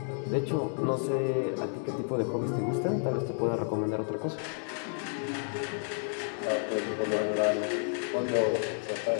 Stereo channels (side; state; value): right; silent; 57 dB below the other